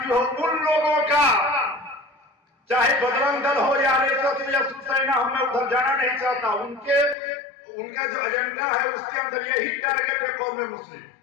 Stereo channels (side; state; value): right; drops out; at 7.2 s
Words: हो, उन लोगों का, चाहे बजरंग दल हो या आरएसएस या शिवसेना हो, मैं उधर जाना नहीं चाहता। उनका जो एजेंडा है उसके अंदर यही टारगेट है कौम मुस्लिम,